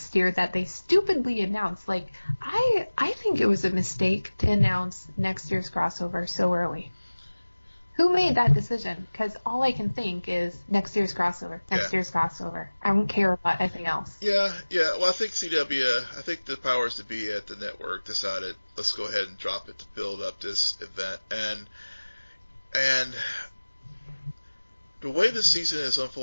year that they stupidly announced. Like, I think it was a mistake to announce next year's crossover so early. Who made that decision? Because all I can think is next year's crossover. Year's crossover. I don't care about anything else. Yeah. Well, I think I think the powers to be at the network decided, let's go ahead and drop it to build up this event. And the way the season is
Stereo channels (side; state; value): both; inverted; correlation -1.00